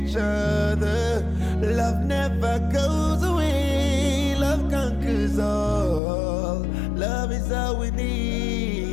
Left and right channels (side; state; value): right; drops out; at 6.0 s